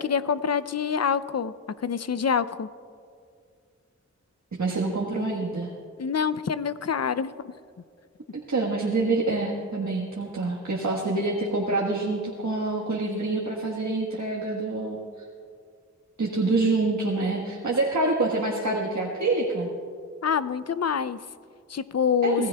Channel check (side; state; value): both; normal; correlation 0.13